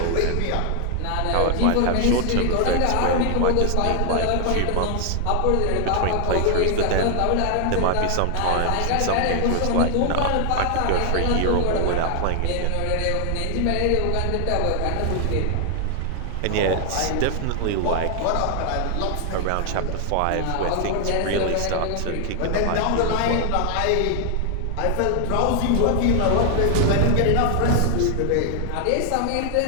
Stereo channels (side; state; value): both; different; correlation 0.00